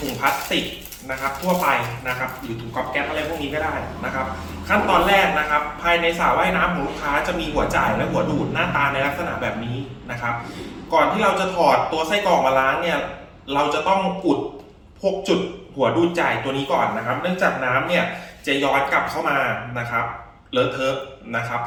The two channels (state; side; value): identical; both; correlation 1.00